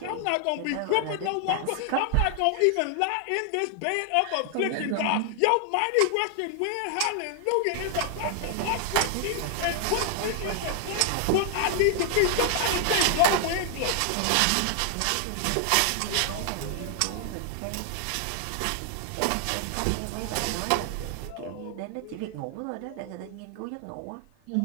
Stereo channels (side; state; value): both; different; correlation 0.00